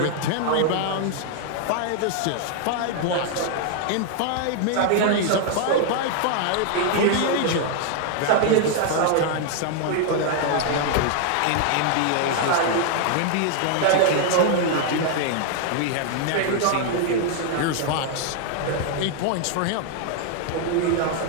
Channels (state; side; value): different; both; correlation 0.00